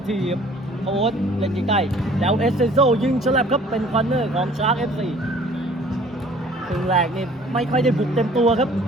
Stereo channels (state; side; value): normal; both; correlation 0.53